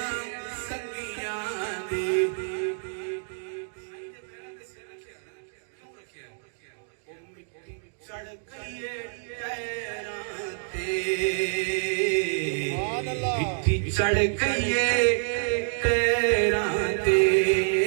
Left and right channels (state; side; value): silent; left; digital silence